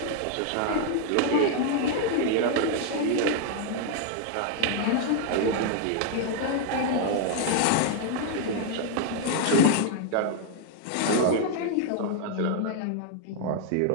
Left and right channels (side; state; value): both; different; correlation 0.00